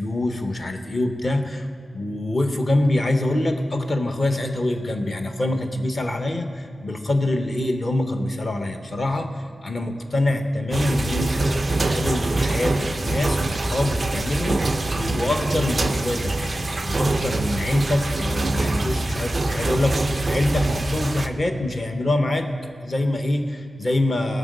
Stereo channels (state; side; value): normal; both; correlation 0.93